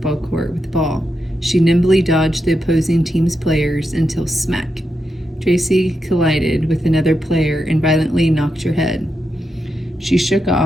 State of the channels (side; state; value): both; normal; correlation 0.86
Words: court with the ball. She nimbly dodged the opposing team's players until smack. Tracy collided with another player and violently knocked her head. She shook